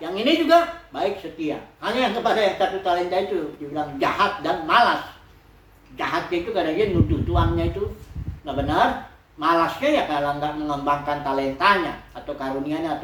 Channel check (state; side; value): identical; both; correlation 1.00